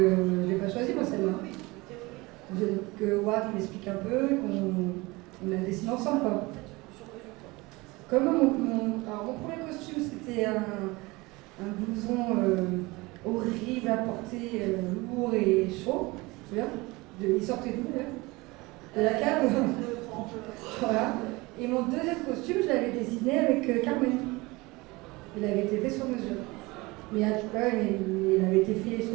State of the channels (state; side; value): quieter; left; 23.0 dB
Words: je l'ai pas choisi, moi, celle-là. Que Howard m'explique un peu, qu'on la dessine ensemble, quoi. Comme mon premier costume, c'était un blouson horrible à porter, lourd et chaud. Tu vois, il sortait d'où, là? De la cave. Voilà. Et mon deuxième costume, je l'avais dessiné avec Carmen. Il avait été fait sur mesure. Mais il avait été fait